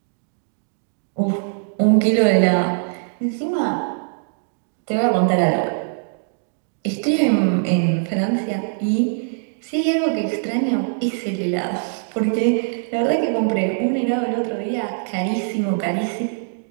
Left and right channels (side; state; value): left; silent; digital silence